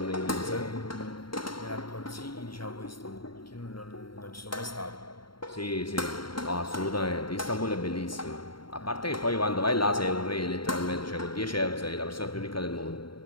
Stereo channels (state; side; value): late; right; 0.73 ms